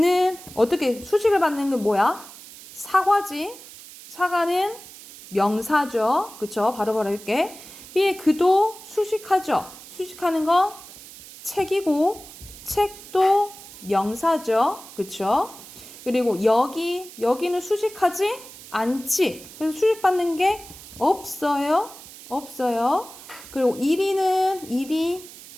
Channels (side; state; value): right; noise; hiss, 17 dB below the sound